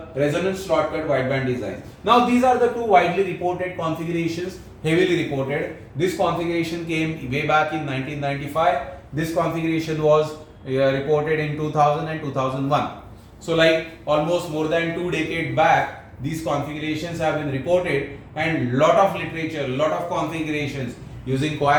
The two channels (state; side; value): identical; both; correlation 1.00